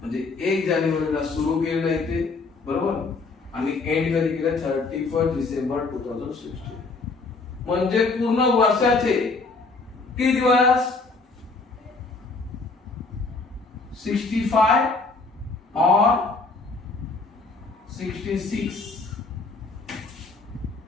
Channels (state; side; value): quieter; right; 3.9 dB